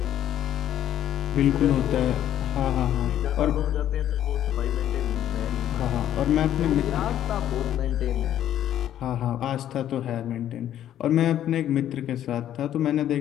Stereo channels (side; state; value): right; quieter; 11.3 dB